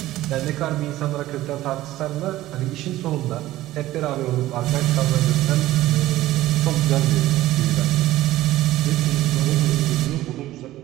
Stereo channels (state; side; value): quieter; left; 15.6 dB